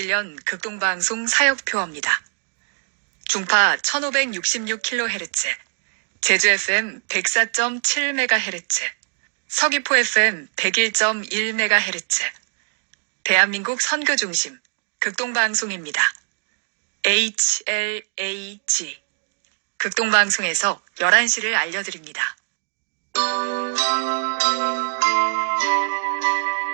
극동방송 사역표어입니다. 중파 1566kHz, 제주 FM 104.7MHz, 서귀포 FM 101.1MHz, 대한민국 선교중심 극동방송입니다. HLAG 극동방송에서 11시를 알려드립니다.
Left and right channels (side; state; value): left; silent; 64 dB below the other